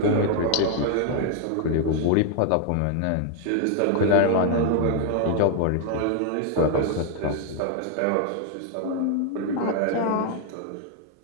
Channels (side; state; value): both; different; correlation 0.00